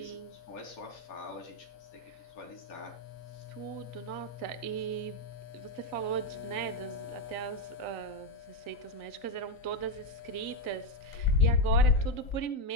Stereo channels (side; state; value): right; late; 3.9 ms